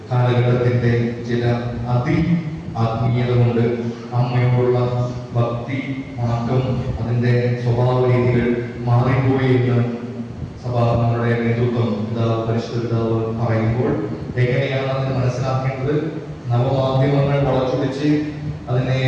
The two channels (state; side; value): identical; both; correlation 1.00